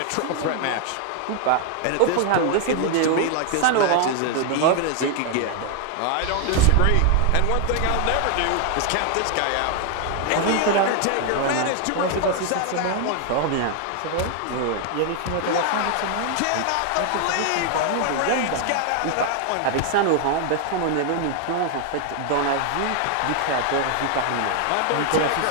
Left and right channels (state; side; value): different; both; correlation 0.00